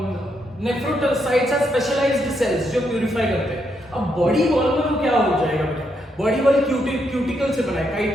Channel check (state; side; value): normal; both; correlation 0.79